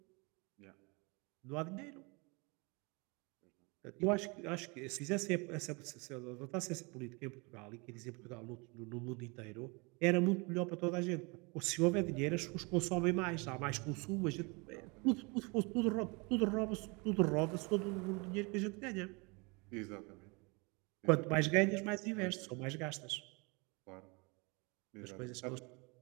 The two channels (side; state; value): left; quieter; 29.3 dB